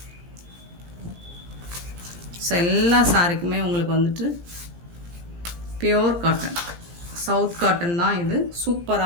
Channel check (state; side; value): late; left; 17 ms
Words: So எல்லா சாரிக்குமே உங்களுக்கு வந்துட்டு பியோர் காட்டன், சவுத் காட்டன் தான் இது.